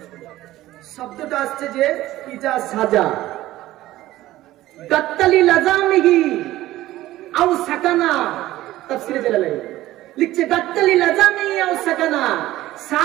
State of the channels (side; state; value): left; quieter; 15.7 dB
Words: শব্দটা আসছে যে ইজা সাজা, গাত্তালি লাজামিহি আও সাকানা, তাফসীরে জালালাইন লিখছে গাত্তালি লাজামিহি আও সাকানা।